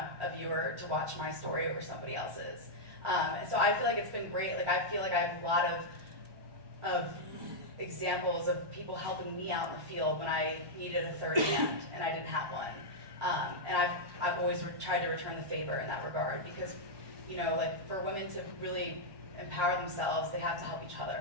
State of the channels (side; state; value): left; late; 1.2 ms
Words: a viewer to watch my story over somebody else's. So I feel like it's been great. Like I feel like I have a lot of examples of people helping me out in the field when I needed a third hand and I didn't have one. And I've always tried to return the favor in that regard because, you know, like for women to really empower themselves, they have to help each